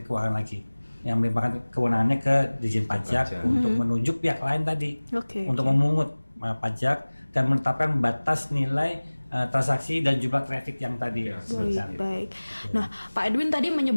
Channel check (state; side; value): inverted; both; correlation -1.00